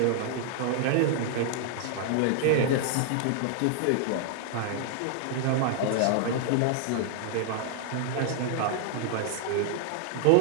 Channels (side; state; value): both; different; correlation -0.01